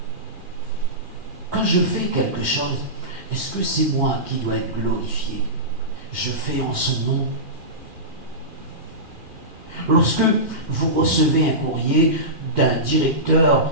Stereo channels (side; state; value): left; late; 2.4 ms